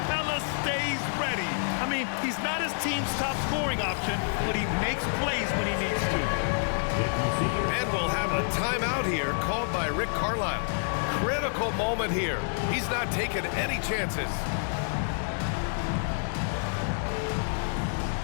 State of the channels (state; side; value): silent; right; 59 dB below the other